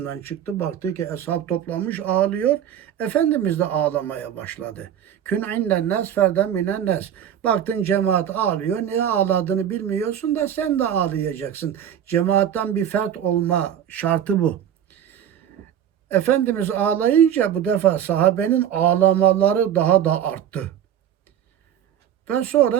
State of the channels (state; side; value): quieter; left; 9.8 dB